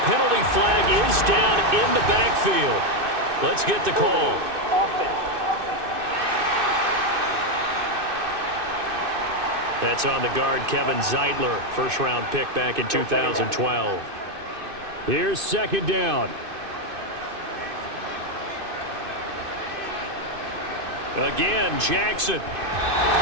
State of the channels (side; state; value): left; late; 2.6 ms